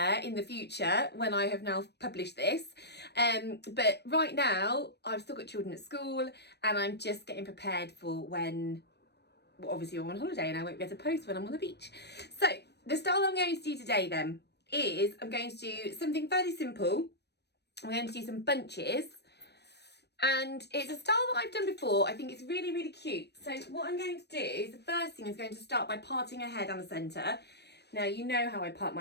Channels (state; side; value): late; right; 0.49 ms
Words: in the future when I have now published this. But right now I've still got children at school and I'm just getting prepared for when, well, obviously I'm on holiday and I won't be able to post when I'm on the beach. So the style I'm going to do today then is I'm going to do something fairly simple. I'm going to do some bunches and it's a style that I've done before. I think it's really, really cute. So what I'm going to do is the first thing is going to start by parting her hair down the centre. Now, you know how I part